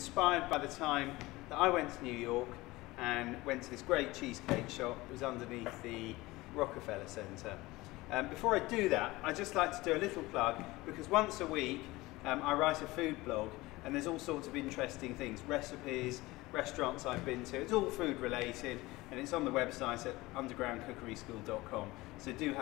by the time that I went to New York and went to this great cheesecake shop. It was underneath the Rockefeller Centre. Before I do that, I just like to do a little plug, because once a week I write a food blog, and there's all sorts of interesting things, recipes, restaurants I've been to. It's all food related, and it's on the website at undergroundcookeryschool.com, so do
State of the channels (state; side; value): quieter; right; 20.2 dB